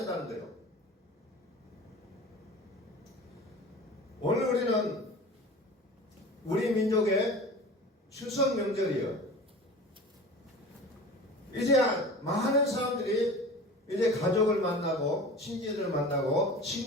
거예요. 오늘 우리는 우리 민족의 추석 명절이에요. 이제 많은 사람들이 이제 가족을 만나고 친지들을 만나고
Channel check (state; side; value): normal; both; correlation 0.37